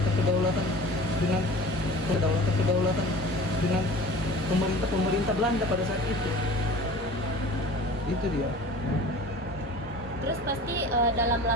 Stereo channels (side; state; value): both; normal; correlation 0.41